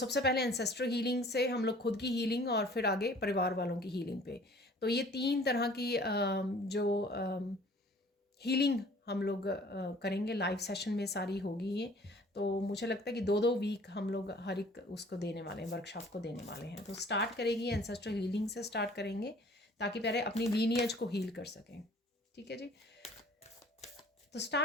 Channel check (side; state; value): both; normal; correlation 0.52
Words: पहले एंसेस्ट्रल हीलिंग से हम लोग खुद की हीलिंग, और फिर आगे परिवार वालों की हीलिंग पे। तो ये 3 तरह की जो हीलिंग हम लोग करेंगे लाइव सेशन में, सारी होगी ये। तो मुझे लगता है कि 2-2 वीक हम लोग हर एक उसको देने वाले हैं, वर्कशॉप को देने वाले हैं। तो स्टार्ट करेगी एंसेस्ट्रल हीलिंग से स्टार्ट करेंगे, ताकि पहले अपनी लीनियज को हील कर सकें। ठीक है जी, तो